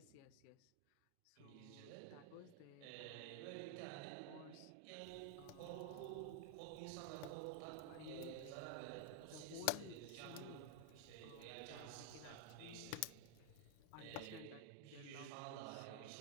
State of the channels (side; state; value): both; different; correlation 0.00